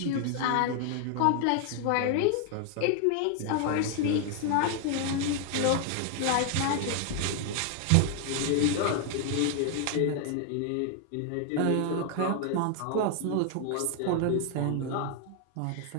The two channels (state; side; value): different; both; correlation 0.00